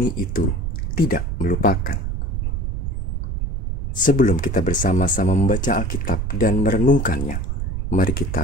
itu tidak melupakan. Sebelum kita bersama-sama membaca Alkitab dan merenungkannya, mari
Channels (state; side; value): noise; right; rumble, 2 dB below the sound